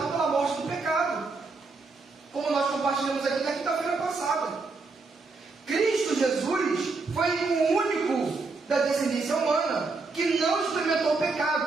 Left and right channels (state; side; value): quieter; left; 4.0 dB